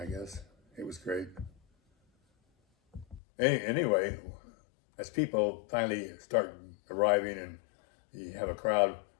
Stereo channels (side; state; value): right; drops out; at 3.2 s